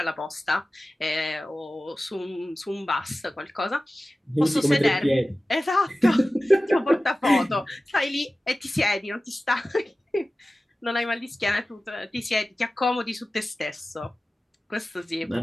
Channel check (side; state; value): both; normal; correlation 0.96